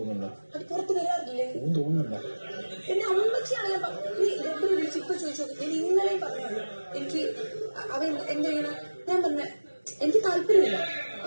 അത് പുറത്ത് വരാറില്ലേ? തോന്നുന്നുണ്ടോ? എന്നെ അമ്മച്ചിയാണ് ഞാൻ വിളിച്ച് ഇപ്പൊ ചോദിച്ചു. ഞാൻ ഇന്നലെയും പറഞ്ഞുള്ളൂ എനിക്ക് അവൻ എന്ത് ചെയ്യണം. ഞാൻ പറഞ്ഞ എനിക്ക് താല്പര്യമില്ല.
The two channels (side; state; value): both; inverted; correlation -1.00